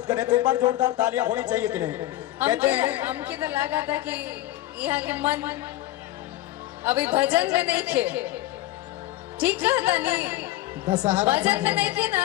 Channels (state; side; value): quieter; right; 15.7 dB